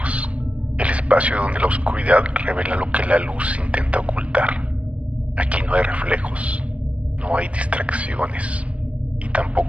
el espacio donde la oscuridad revela lo que la luz intenta ocultar. Aquí no hay reflejos, no hay distracciones y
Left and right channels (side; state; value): left; late; 0.063 ms